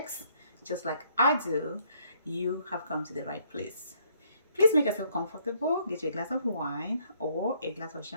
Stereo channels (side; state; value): both; inverted; correlation -0.67